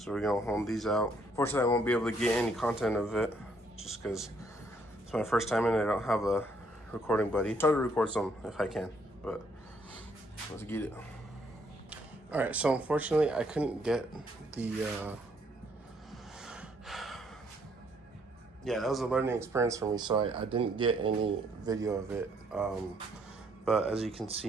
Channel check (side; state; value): both; normal; correlation 0.69